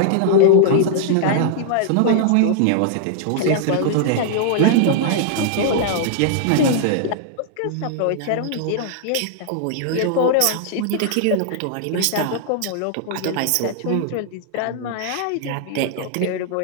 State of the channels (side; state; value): both; different; correlation -0.01